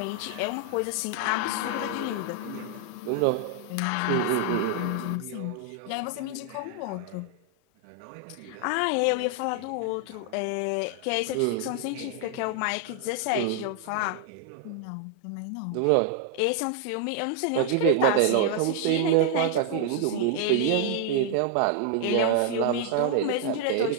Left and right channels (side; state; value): both; different; correlation 0.00